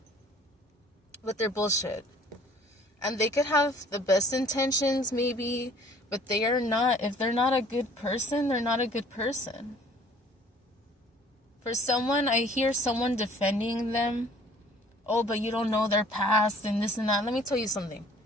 with their bullshit. And they could have the best intentions maybe, but they are not. If they're not a good person, they're not a good person. For someone, I hear someone defending them. Oh, but you don't know their past and this and that. Let me tell you something.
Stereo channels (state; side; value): normal; both; correlation 0.54